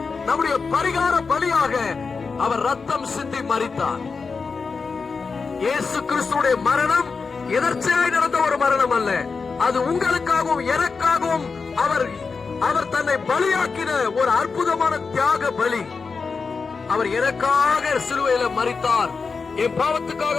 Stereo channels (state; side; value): quieter; right; 4.8 dB